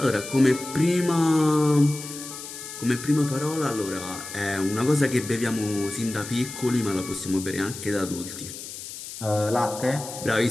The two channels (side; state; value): left; noise; hiss, 11 dB below the sound